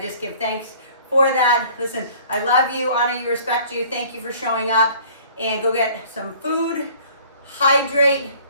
give thanks for that. Listen, I love you, honor you, respect you. Thank you for showing up, and go get some food, hydrate.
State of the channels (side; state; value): both; inverted; correlation -0.52